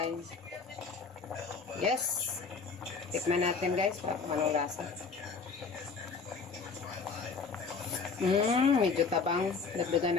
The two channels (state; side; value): quieter; right; 4.9 dB